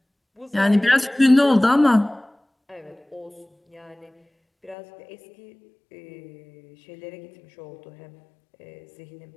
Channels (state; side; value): drops out; right; at 4.8 s